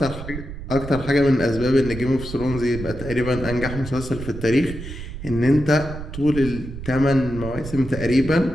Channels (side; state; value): right; noise; rumble, 10 dB below the sound